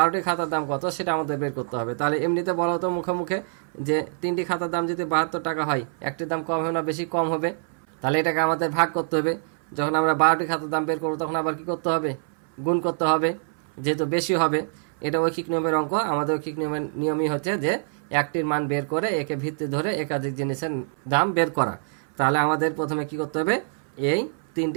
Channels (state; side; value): silent; left; 62 dB below the other